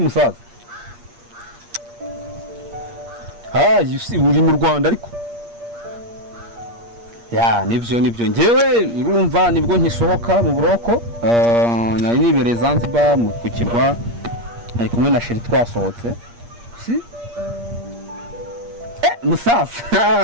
musaza? Uri mu Rwanda ariko. Nibyo njyewe urumva nibwo nkisohoka mu buroko nari nibereye Zanzibar mu kukirwa ari kumwe na sheri twasohotse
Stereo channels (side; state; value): left; late; 8.5 ms